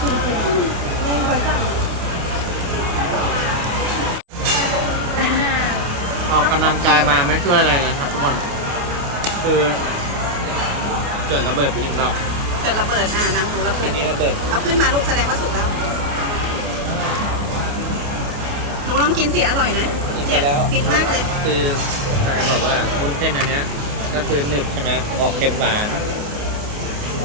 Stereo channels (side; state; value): left; late; 28 ms